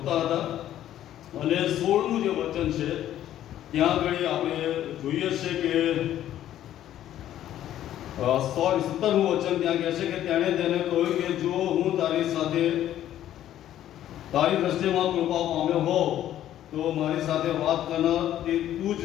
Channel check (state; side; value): quieter; right; 12.0 dB